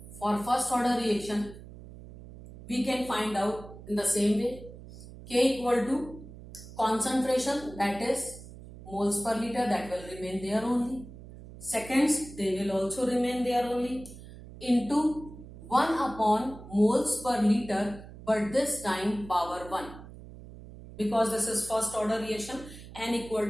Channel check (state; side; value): noise; right; hum, 16 dB below the sound